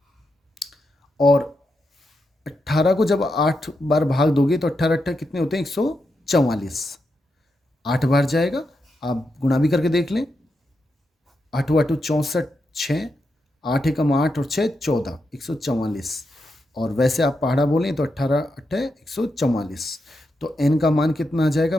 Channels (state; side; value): normal; both; correlation 0.85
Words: और 18 को जब 8 बार भाग दोगे तो 18 कितने होते हैं? 144। 8 बार जाएगा, आप गुणा भी करके देख लें। 8 8 64, 6, 8 एकम 8 और 6 14, 144। और वैसे आप पहाड़ा बोलें तो 18 8 144। तो n का मान कितना आ